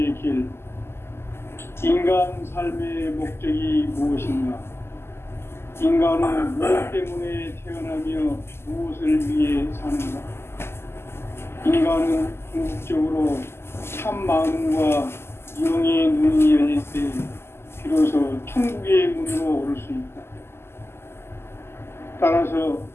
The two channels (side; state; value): right; late; 0.12 ms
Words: 길. 인간 삶의 목적이 무엇인가? 인간은 무엇 때문에 태어나며 무엇을 위해 사는가? 인간은 궁극적으로 참 마음과 영의 눈이 열릴 때 비로소 천국의 문으로 오를 수 있다. 따라서